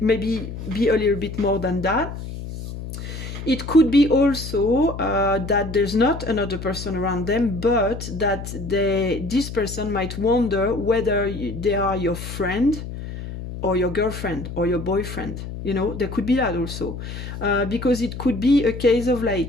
maybe be a little bit more than that. It could be also that there's not another person around them, but that this person might wonder whether they are your friend or your girlfriend or your boyfriend. There could be that also. Because it could be a case of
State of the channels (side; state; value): left; noise; hum, 9 dB below the sound